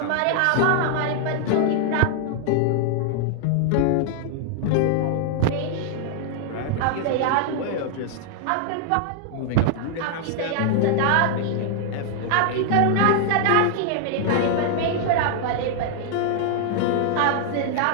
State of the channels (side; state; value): both; different; correlation 0.00